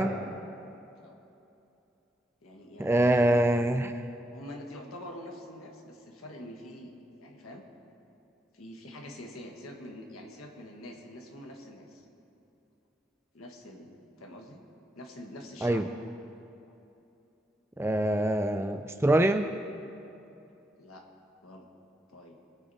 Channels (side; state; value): both; normal; correlation 0.82